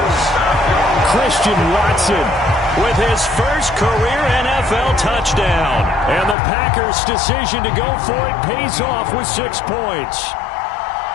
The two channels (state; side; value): drops out; right; at 6.4 s